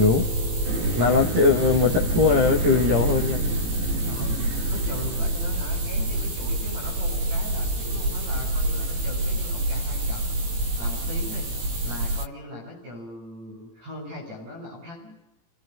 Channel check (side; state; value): left; late; 18 ms